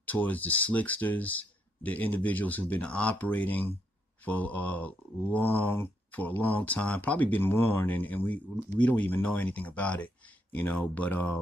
towards the slicksters, the individuals who've been operating for a long time, probably been warned, and we don't even know anything about it, you know. But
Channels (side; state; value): both; normal; correlation 0.77